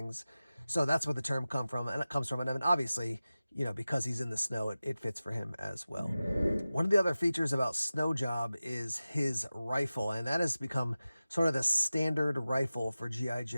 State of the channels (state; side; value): inverted; both; correlation -0.96